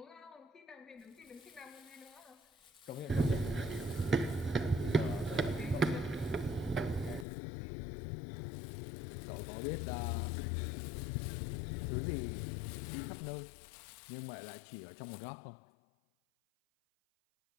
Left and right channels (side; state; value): right; drops out; at 7.2 s